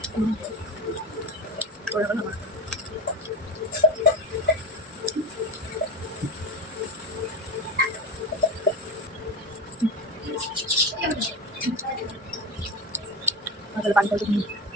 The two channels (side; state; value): both; normal; correlation 0.23